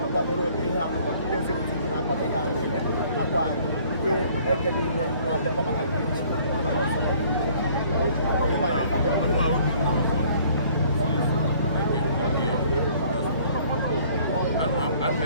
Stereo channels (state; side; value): inverted; both; correlation -0.57